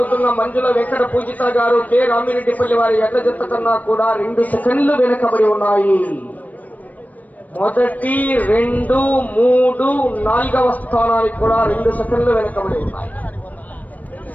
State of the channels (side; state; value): right; late; 0.076 ms